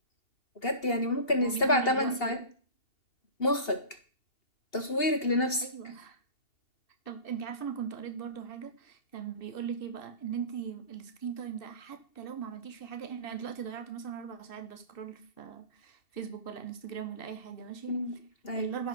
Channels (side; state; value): right; late; 2.8 ms